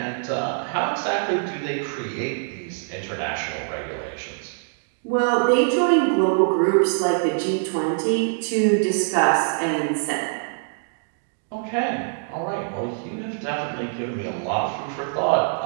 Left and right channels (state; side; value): silent; left; digital silence